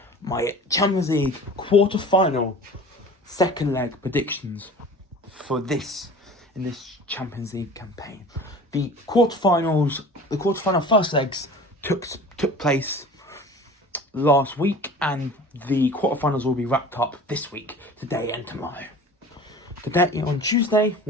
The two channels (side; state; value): both; normal; correlation 0.41